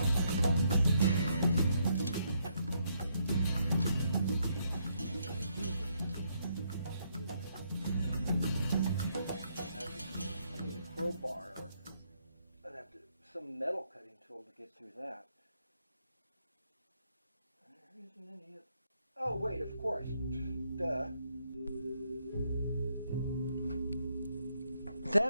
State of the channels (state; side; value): inverted; both; correlation -0.74